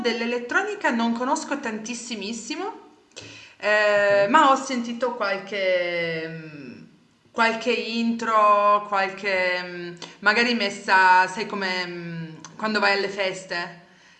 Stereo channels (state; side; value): identical; both; correlation 1.00